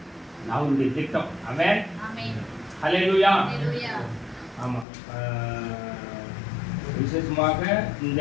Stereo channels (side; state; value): right; drops out; at 4.9 s